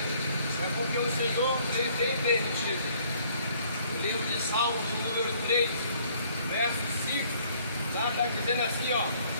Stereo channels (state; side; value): inverted; both; correlation -0.62